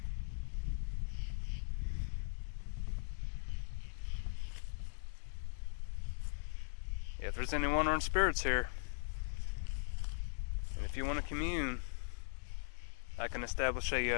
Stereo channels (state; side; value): silent; right; digital silence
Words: Yeah, if there's any wandering spirits here, and if you want to commune, I can establish